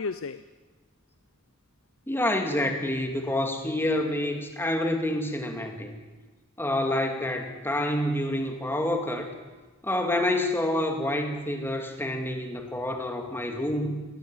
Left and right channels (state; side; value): normal; both; correlation 0.64